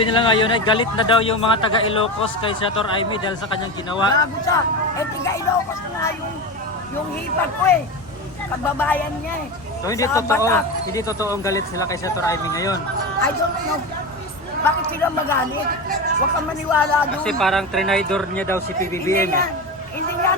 nila ngayon ay galit na daw yung mga taga Ilocos kay Senator Amy dahil sa kanyang ginawa. Gago siya. Eh, tiga Ilocos na nga yung hipag ko eh. Kababayan niya eh. So hindi Sa totoo, Batak. hindi totoong galit sila kay Senator Amy ngayon. I don't know. Bakit sila magalit? Huwag kang maniwala doon. Kasi parang trinidor niya daw si Hindi PBBM. hindi nga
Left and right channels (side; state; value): both; normal; correlation 0.22